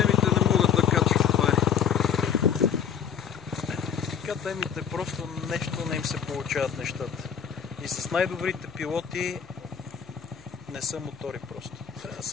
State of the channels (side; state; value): right; quieter; 7.8 dB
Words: Темите просто нещо не им се получават нещата. И с най-добрите пилоти не са мотори просто. Трябва да